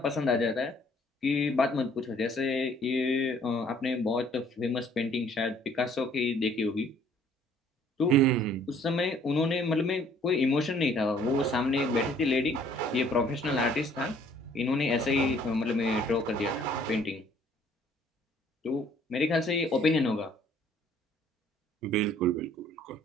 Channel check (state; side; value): normal; both; correlation 0.59